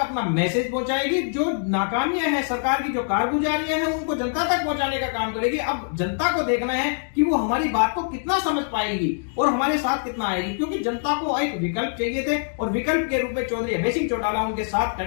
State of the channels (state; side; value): silent; right; digital silence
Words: मैसेज पहुंचाएगी। जो नाकामियां हैं, सरकार की जो कारगुजारियां हैं, उनको जनता तक पहुंचाने का काम करेगी। अब जनता को देखना है कि वो हमारी बात को कितना समझ पाएगी और हमारे साथ कितना आएगी, क्योंकि जनता को एक विकल्प चाहिए थे और विकल्प के रूप में चौधरी अभय सिंह चौटाला उनके साथ